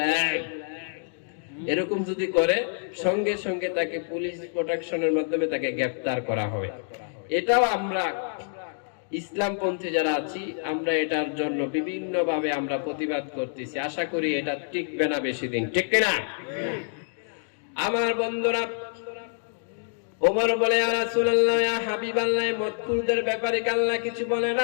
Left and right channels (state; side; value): silent; right; digital silence